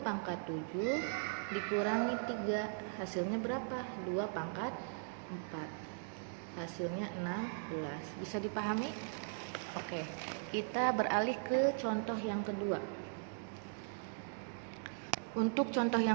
pangkat 7 dikurangi 3. Hasilnya berapa? 2 pangkat 4. Hasilnya 16. Bisa dipahami? Oke, kita beralih ke contoh yang kedua. Untuk contoh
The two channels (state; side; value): silent; left; digital silence